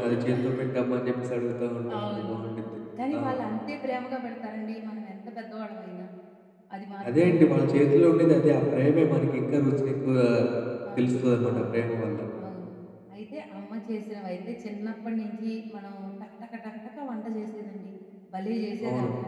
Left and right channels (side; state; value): both; identical; correlation 1.00